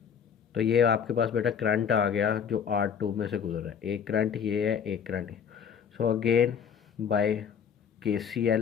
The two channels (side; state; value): right; quieter; 7.5 dB